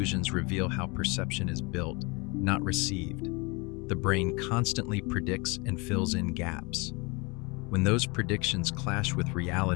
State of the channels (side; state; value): right; quieter; 28.4 dB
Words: reveal how perception is built, not received. The brain constantly predicts and fills in gaps. When those predictions clash with